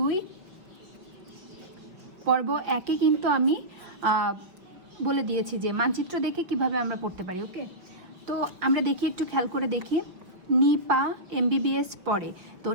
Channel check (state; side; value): late; left; 5.4 ms